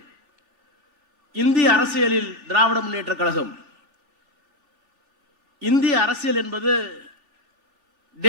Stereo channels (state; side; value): late; left; 3.4 ms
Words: இந்திய அரசியலில் திராவிட முன்னேற்ற கழகம், இந்திய அரசியல் என்பது